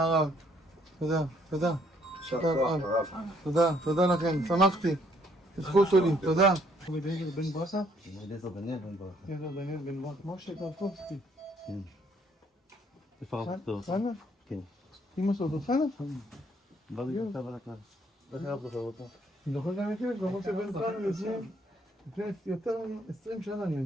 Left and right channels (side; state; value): both; normal; correlation 0.67